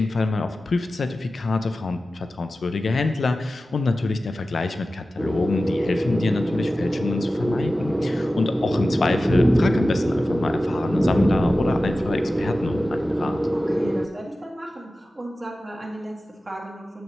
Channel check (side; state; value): both; normal; correlation 0.95